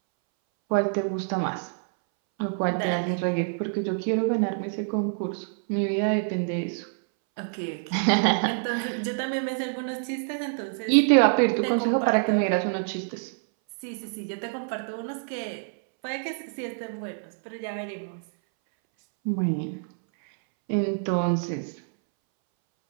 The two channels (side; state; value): left; silent; 60 dB below the other